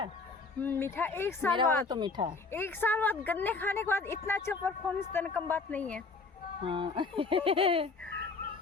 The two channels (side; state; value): right; quieter; 4.1 dB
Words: मीठा। एक साल मेरा वाला बाद तो मीठा है। एक साल बाद गन्ने खाने के बाद इतना अच्छा परफॉर्मेंस देना कम बात नहीं है। हाँ।